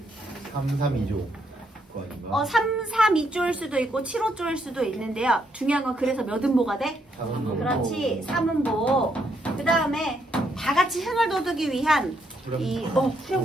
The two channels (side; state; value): both; normal; correlation 0.75